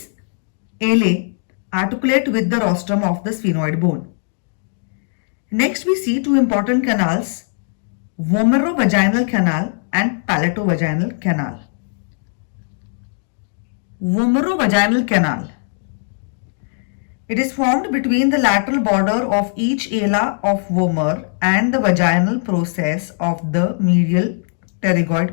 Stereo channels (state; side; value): silent; right; 63 dB below the other